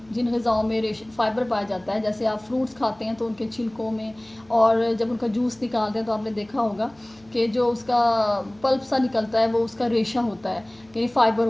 जिन ग़िज़ाओं में फ़ाइबर पाया जाता है, जैसे आप फ्रूट्स खाते हैं तो उनके छिलकों में, और जब उनका जूस निकालते हैं तो आपने देखा होगा कि जो उसका पल्प सा निकलता है वो उसका रेशा होता है, यानी फ़ाइबर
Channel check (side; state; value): left; noise; hum, 30 dB below the sound